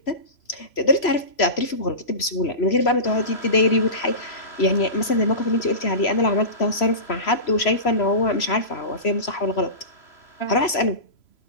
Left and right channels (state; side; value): late; right; 3.0 ms